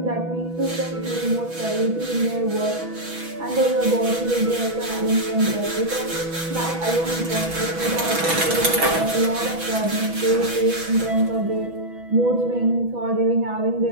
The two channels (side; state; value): left; late; 6.1 ms